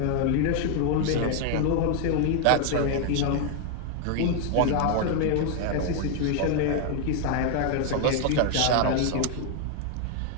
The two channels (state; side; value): different; both; correlation 0.00